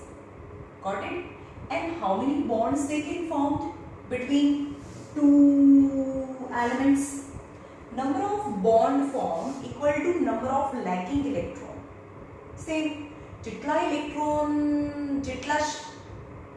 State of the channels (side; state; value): both; identical; correlation 1.00